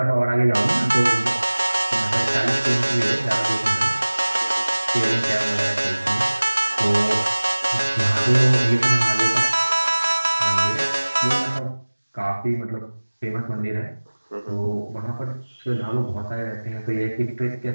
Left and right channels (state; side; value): inverted; both; correlation -1.00